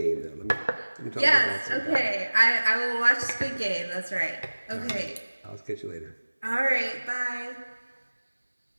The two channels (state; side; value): inverted; both; correlation -1.00